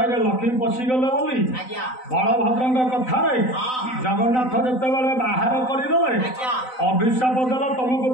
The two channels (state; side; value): late; right; 3.9 ms